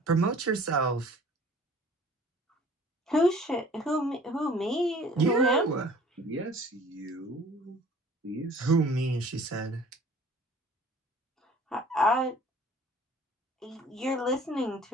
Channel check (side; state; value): both; normal; correlation 0.50